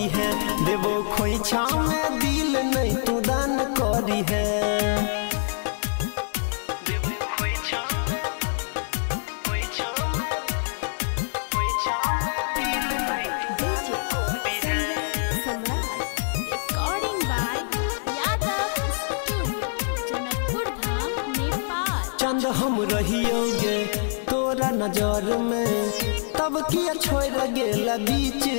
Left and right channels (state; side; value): silent; right; digital silence